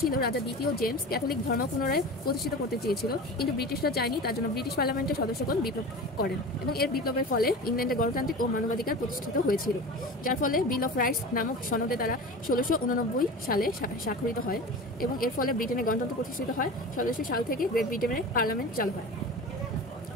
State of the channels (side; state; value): both; normal; correlation 0.33